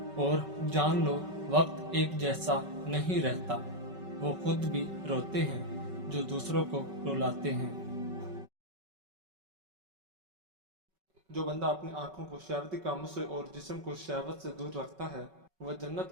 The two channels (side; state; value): left; late; 5.3 ms